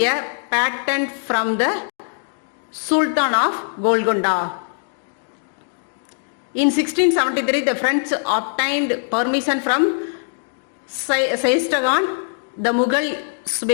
a patent from the Sultan of Golconda. In 1673, the French obtained permission from Saistagan, the Mughal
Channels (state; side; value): silent; right; digital silence